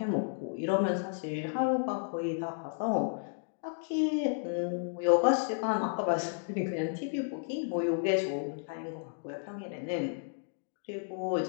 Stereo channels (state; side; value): silent; right; digital silence